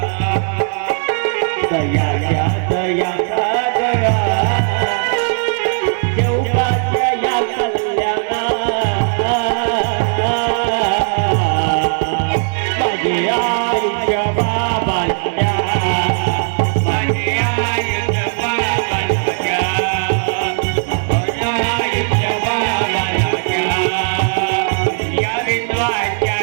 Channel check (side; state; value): left; silent; digital silence